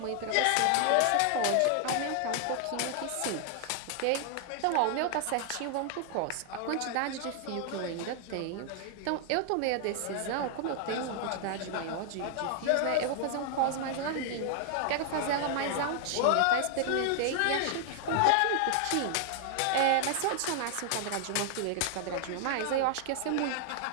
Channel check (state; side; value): different; both; correlation 0.00